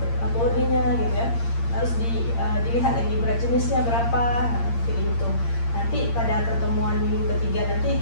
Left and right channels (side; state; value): right; late; 8.7 ms